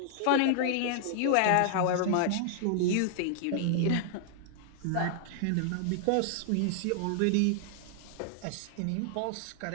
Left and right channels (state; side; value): different; both; correlation -0.01